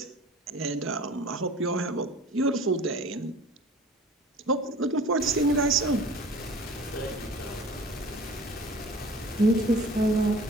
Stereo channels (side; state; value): both; normal; correlation 0.44